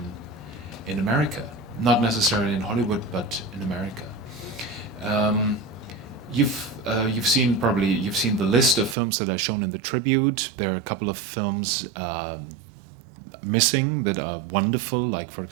in America. Not necessarily in Hollywood, but in America. You've seen the list of films that are shown in the tribute. There are a couple of films missing that are wonderful, like for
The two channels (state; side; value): drops out; left; at 9.0 s